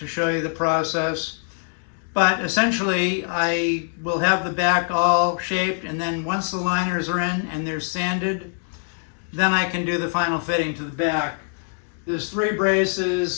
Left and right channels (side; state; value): right; silent; 63 dB below the other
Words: show you the process. But essentially, I will have the back all shaped, and then once the liners are in and they're sanded, then I can do the final fitting to the back. There's 3